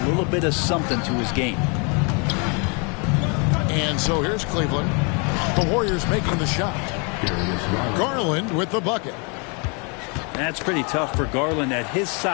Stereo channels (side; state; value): right; quieter; 34.3 dB